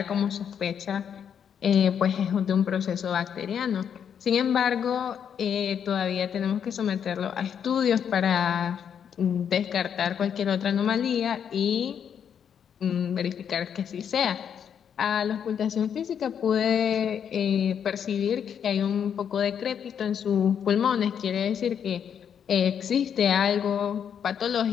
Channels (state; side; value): quieter; right; 8.1 dB